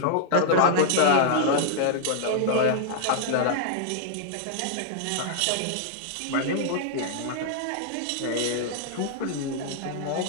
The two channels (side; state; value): both; different; correlation -0.01